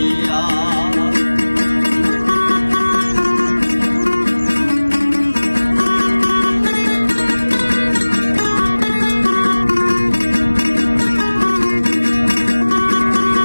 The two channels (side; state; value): both; inverted; correlation -1.00